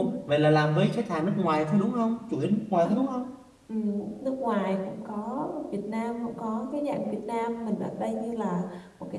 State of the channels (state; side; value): identical; both; correlation 1.00